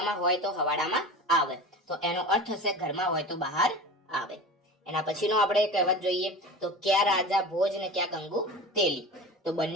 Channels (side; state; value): both; normal; correlation 0.33